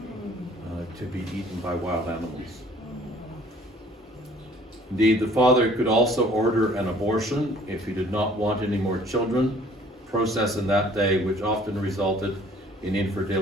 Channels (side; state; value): both; normal; correlation 0.55